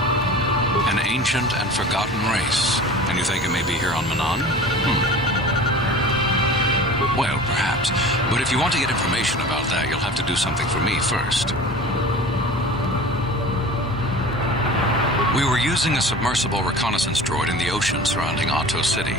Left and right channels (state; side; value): normal; both; correlation 0.39